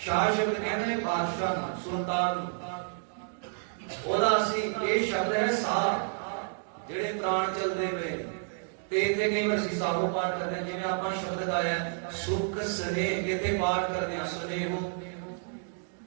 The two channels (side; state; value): left; silent; digital silence